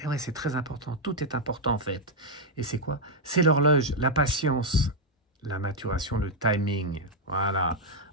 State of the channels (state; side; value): normal; both; correlation -0.01